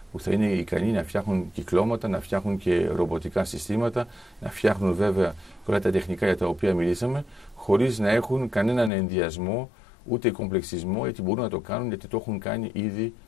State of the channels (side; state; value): right; drops out; at 8.9 s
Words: που θα είναι ικανοί να φτιάχνουν κυκλώματα, να φτιάχνουν και ρομποτικά συστήματα, να φτιάχνουν βέβαια όλα τα τεχνικά για τα οποία μιλήσαμε, χωρίς να έχουν κανέναν ενδιασμό ούτε κομπλεξισμό, γιατί μπορούν να το κάνουν γιατί το έχουν κάνει ήδη